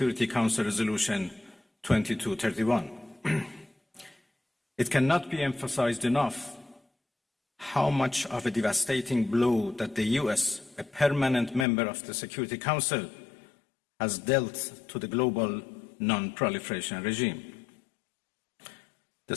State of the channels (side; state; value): right; drops out; at 11.7 s